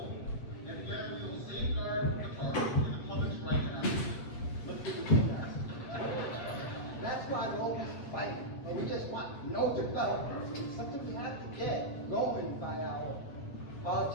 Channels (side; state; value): right; late; 8.3 ms